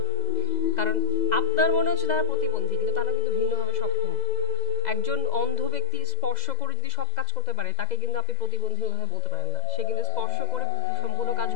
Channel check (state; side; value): late; right; 2.0 ms